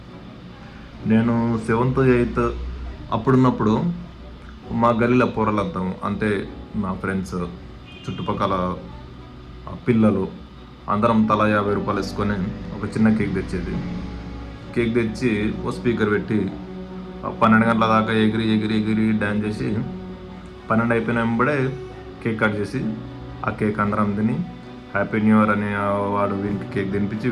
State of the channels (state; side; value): identical; both; correlation 1.00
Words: నేను 7th 8th అప్పుడున్నప్పుడు మా గల్లీలో పోరలంతా, అంటే నా ఫ్రెండ్స్, చుట్టుపక్కల పిల్లలు అందరం తలా 50 రూపాయలు వేసుకొని ఒక చిన్న కేక్ తెచ్చేది. కేక్ తెచ్చి ఓ స్పీకర్ పెట్టి 12 గంటల దాకా ఎగిరి ఎగిరి ఎగిరి డ్యాన్స్ చేసి 12 అయిపోయిన వెంబడే కేక్ కట్ చేసి ఆ కేక్ అందరం తిని హ్యాపీ న్యూ ఇయర్ అని వాడు వీనికి కేక్ తినిపించి